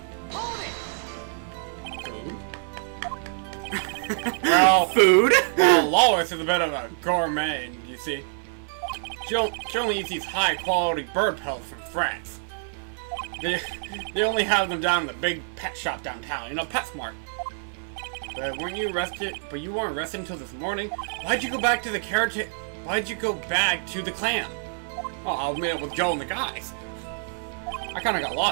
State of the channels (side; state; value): left; silent; digital silence